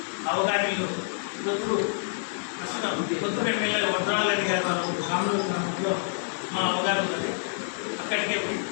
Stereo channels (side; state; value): right; silent; 59 dB below the other